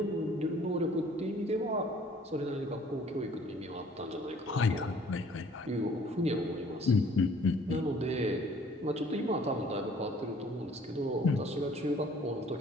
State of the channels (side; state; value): both; normal; correlation 0.56